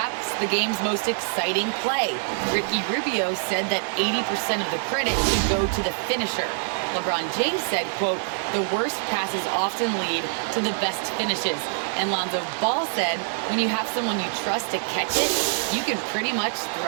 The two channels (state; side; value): silent; left; digital silence